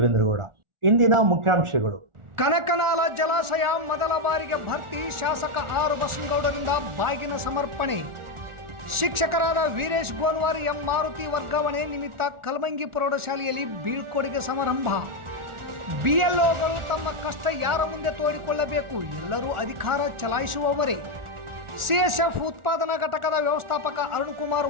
ಇಂದಿನ ಮುಖ್ಯಾಂಶಗಳು. ಕನಕನಾಲ ಜಲಾಶಯ ಮೊದಲ ಬಾರಿಗೆ ಭರ್ತಿ. ಶಾಸಕ ಆರ್ ಬಸನಗೌಡರಿಂದ ಬಾಗಿನ ಸಮರ್ಪಣೆ. ಶಿಕ್ಷಕರಾದ ವೀರೇಶ್ ಗೋನ್ವಾರ್, ಎಂ ಮಾರುತಿ ವರ್ಗಾವಣೆ ನಿಮಿತ್ತ ಕಲಮಂಗಿ ಪ್ರೌಢಶಾಲೆಯಲ್ಲಿ ಬೀಳ್ಕೊಡುಗೆ ಸಮಾರಂಭ. ಬಿಎಲ್ಒಗಳು ತಮ್ಮ ಕಷ್ಟ ಯಾರ ಮುಂದೆ ತೋಡಿಕೊಳ್ಳಬೇಕು, ಎಲ್ಲರೂ ಅಧಿಕಾರ ಚಲಾಯಿಸುವವರೇ. ಸಿಎಸ್ಎಫ್ ಉತ್ಪಾದನಾ ಘಟಕದ ವ್ಯವಸ್ಥಾಪಕ ಅರುಣ್ ಕುಮಾರ್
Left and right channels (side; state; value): left; late; 1.4 ms